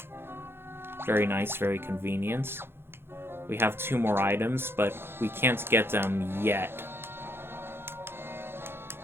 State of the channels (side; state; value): left; late; 0.11 ms